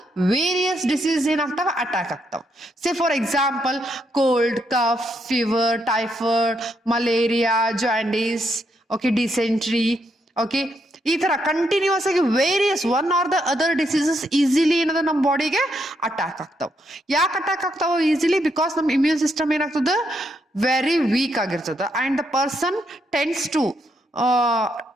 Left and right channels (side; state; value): both; normal; correlation 0.77